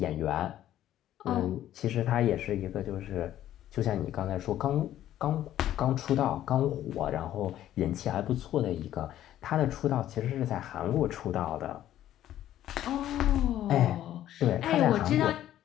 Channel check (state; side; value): quieter; right; 12.4 dB